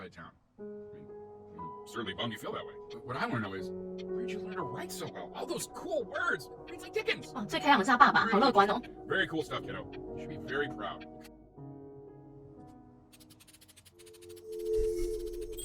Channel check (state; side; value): identical; both; correlation 1.00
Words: town. I mean, certainly bummed you feel that way. But what I want to know is, where'd you learn to write so well? All those cool words. Reads like Dickens. 哦，最开朗的是他爸爸，好乐观哦。 Very cool stuff, kiddo. You should be very proud.